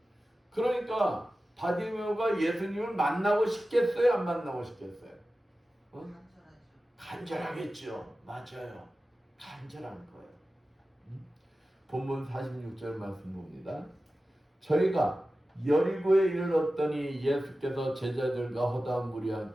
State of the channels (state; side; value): normal; both; correlation 0.95